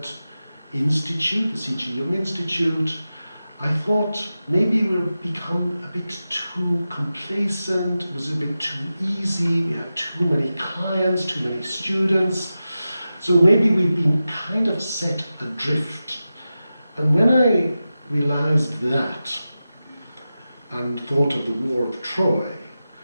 institute, the C.G. Jung Institute, I thought maybe we'll become a bit too complacent, it was a bit too easy, we had too many clients, too many students. So maybe we've been kind of set adrift. And when I realized that, and thought of the War of Troy,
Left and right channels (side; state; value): both; inverted; correlation -0.93